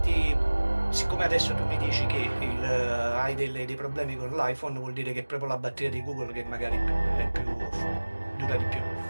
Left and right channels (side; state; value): both; inverted; correlation -1.00